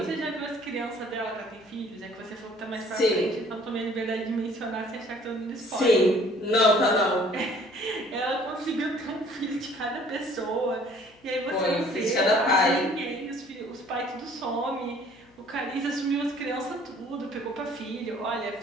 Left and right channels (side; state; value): left; noise; hum, 28 dB below the sound